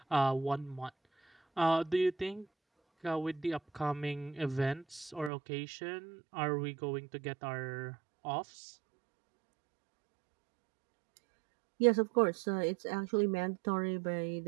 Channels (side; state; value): left; drops out; at 5.3 s